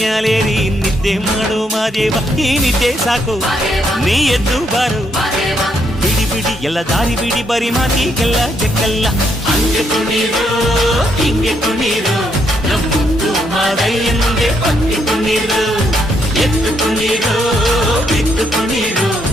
ನಿದ್ದೆ ಮಾಡು ಮಾದೇವ ಈ ನಿದ್ದೆ ಸಾಕು ನೀ ಎದ್ದು ಬಾರು ಬಿಡಿ ಬಿಡಿ ಎಲ್ಲ ದಾರಿ ಬಿಡಿ ಬರಿ ಮಾತಿಗೆಲ್ಲ ಜಕ್ಕಲ್ಲ ಹಂಗೆ ಕುಣೀರು ಹಿಂಗೆ ಕುಣೀರು ನಮ್ಮುತ್ತು ಮಾದಯ್ಯನಿಗೆ ಪತ್ತಿ ಕುಣೀರು ಎತ್ತು ಕುಣೀರು ಬಿತ್ತು ಕುಣೀರು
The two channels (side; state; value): both; normal; correlation 0.75